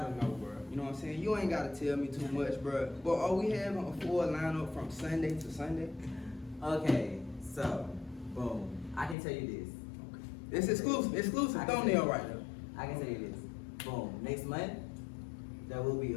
know, bruh. You know what I'm saying? You ain't gotta tell me too much, bruh. But are we having a full lineup from Sunday to Sunday? Okay, so, boom. I can tell you It's exclusive thumbnail right now. I can tell you this. Boom. Next month, there will be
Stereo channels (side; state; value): right; drops out; at 9.2 s